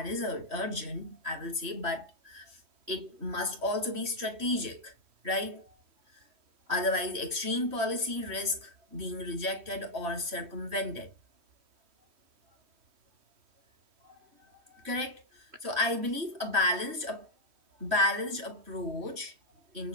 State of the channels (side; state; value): left; late; 3.1 ms